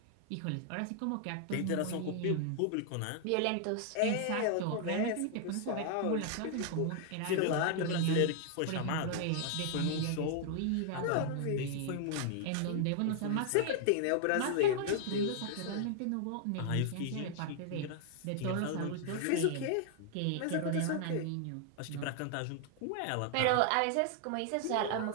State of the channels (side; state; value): both; different; correlation 0.00